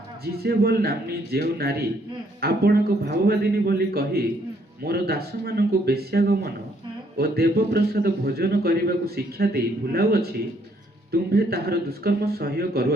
ଜିଜେବଲ ନାମ୍ନୀ ଯେଉଁ ନାରୀ ଆପଣଙ୍କ ଭାବବାଦିନୀ ବୋଲି କହି ମୋର ଦାସମାନଙ୍କୁ ବେଶ୍ୟାଗମନ ଓ ଦେବପ୍ରସାଦ ଭୋଜନ କରିବାକୁ ଶିକ୍ଷା ଦେଇ ଭୁଲାଉଅଛି, ତୁମ୍ଭେ ତାହାର ଦୁଷ୍କର୍ମ ସହ୍ୟ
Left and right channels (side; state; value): both; normal; correlation 0.68